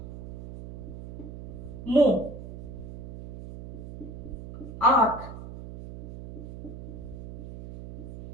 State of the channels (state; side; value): noise; right; hum, 11 dB below the sound